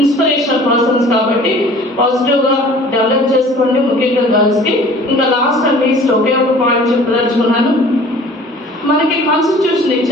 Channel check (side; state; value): both; normal; correlation 0.48